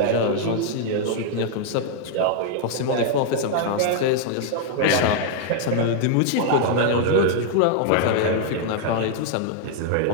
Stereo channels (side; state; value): both; different; correlation 0.00